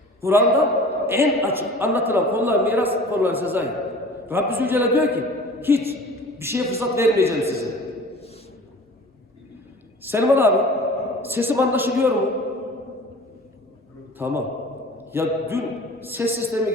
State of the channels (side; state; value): both; normal; correlation 0.42